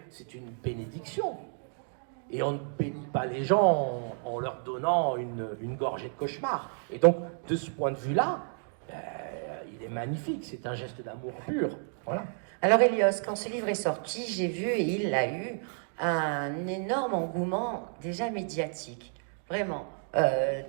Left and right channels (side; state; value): left; silent; 57 dB below the other